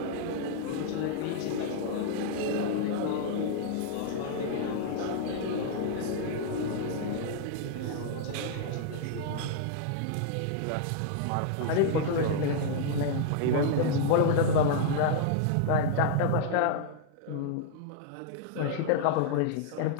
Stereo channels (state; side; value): different; both; correlation -0.01